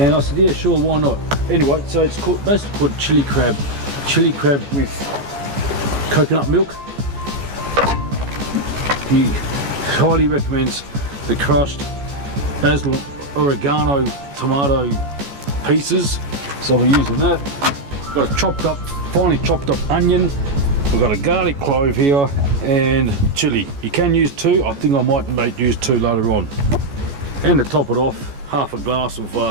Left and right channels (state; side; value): late; left; 14 ms